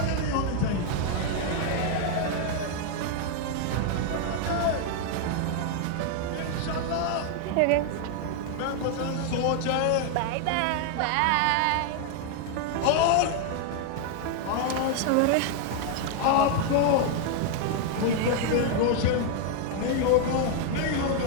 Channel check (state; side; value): different; both; correlation 0.00